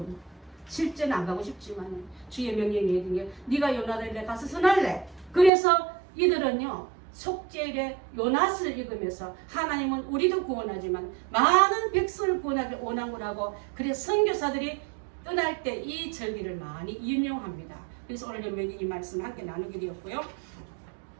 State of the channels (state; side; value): drops out; left; at 5.5 s